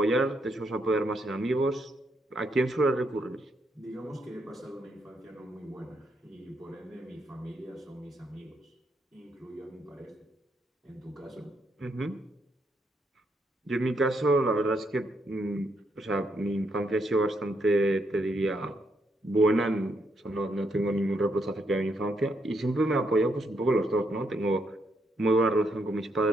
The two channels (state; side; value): normal; both; correlation 0.77